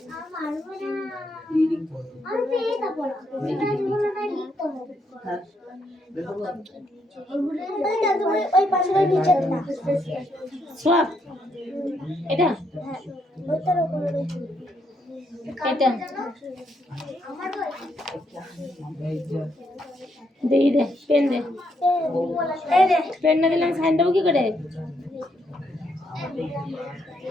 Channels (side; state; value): both; normal; correlation 0.76